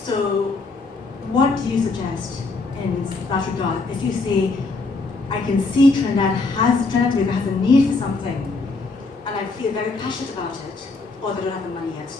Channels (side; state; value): right; quieter; 3.8 dB